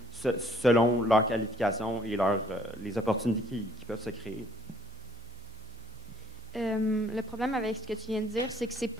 selon leurs qualifications et les opportunités qui peuvent se créer. Le problème avec ce que tu viens de dire, c'est que c'est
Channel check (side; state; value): right; noise; hum, 21 dB below the sound